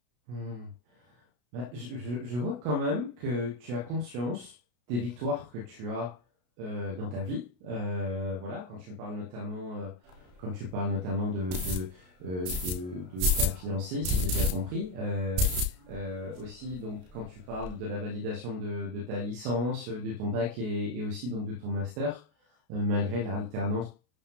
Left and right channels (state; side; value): late; left; 33 ms